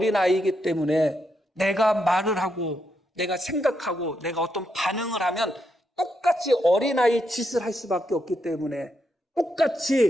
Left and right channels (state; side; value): normal; both; correlation 0.81